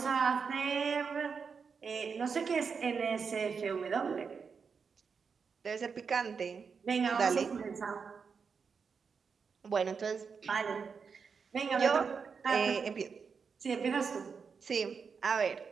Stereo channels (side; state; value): left; quieter; 5.7 dB